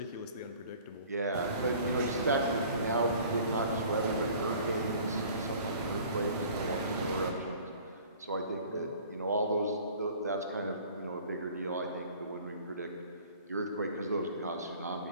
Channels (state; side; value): inverted; both; correlation -0.50